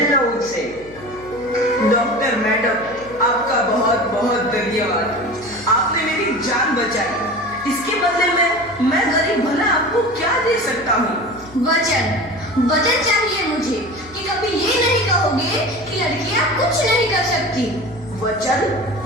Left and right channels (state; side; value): noise; left; hum, 22 dB below the sound